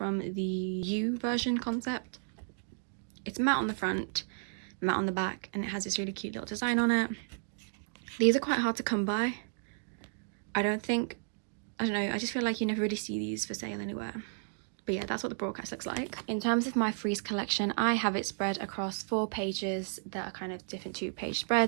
the U version concept. It's matte on the front, matte on the back, and it has this really cute little design on it. These are quite hard to come by. I don't know, I just feel like you never really see these for sale anywhere. But yeah, that's what the broadcast looks like. In terms of my freeze collection, I have it spread across 4 pages that are kind of different 2-page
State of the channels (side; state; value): left; silent; digital silence